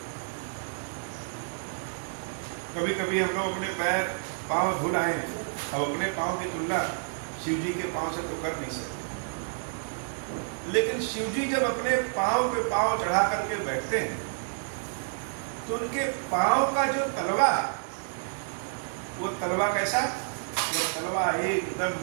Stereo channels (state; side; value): silent; left; digital silence